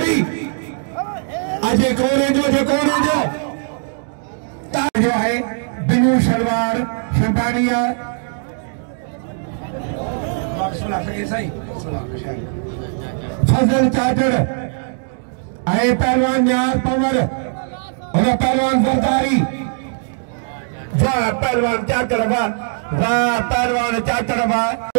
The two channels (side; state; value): left; silent; digital silence